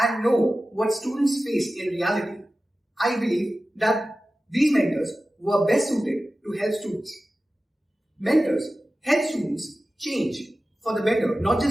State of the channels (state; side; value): normal; both; correlation 0.95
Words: and know what students face in reality. I believe that these mentors were best suited to help students. Mentors help students change for the better, not